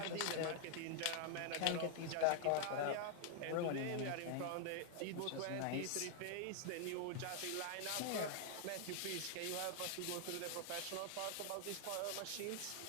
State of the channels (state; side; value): different; both; correlation 0.00